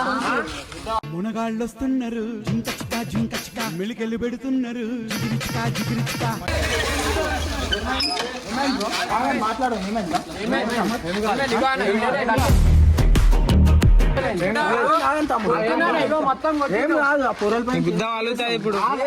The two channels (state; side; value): identical; both; correlation 1.00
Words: మునగాళ్ళొస్తున్నారు, జింకచికా జింకచికా మెలికెళ్ళి పెడుతున్నారు, జిగిరిచికా జిగిరిచికా. మాట్లాడు